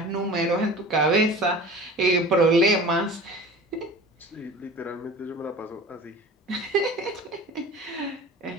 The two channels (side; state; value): both; normal; correlation 0.39